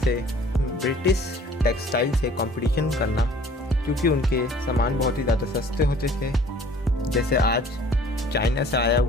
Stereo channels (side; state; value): both; normal; correlation 0.52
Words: ब्रिटिश टेक्सटाइल से कंपटीशन करना, क्योंकि उनके सामान बहुत ही ज़्यादा सस्ते होते थे। जैसे आज चाइना से आया